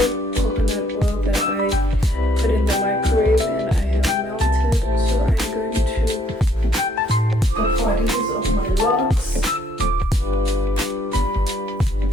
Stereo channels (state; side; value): normal; both; correlation 0.68